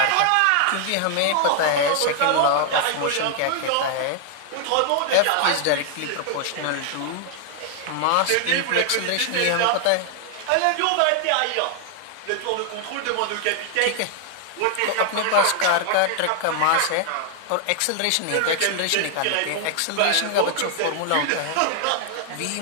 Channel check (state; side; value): different; both; correlation 0.00